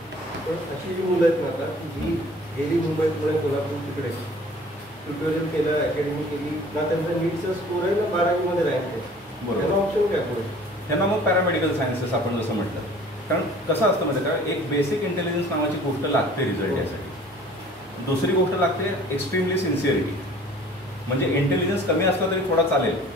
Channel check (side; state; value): both; normal; correlation 0.49